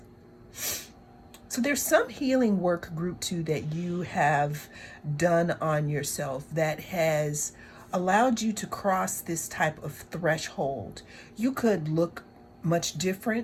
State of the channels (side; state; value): both; identical; correlation 1.00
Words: So there's some healing work, group 2, that you have done on yourself that has allowed you to cross this type of threshold. You could look much